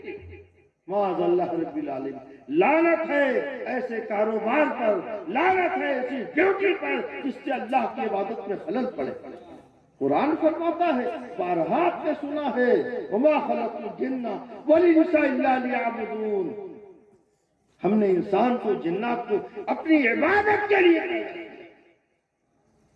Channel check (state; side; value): identical; both; correlation 1.00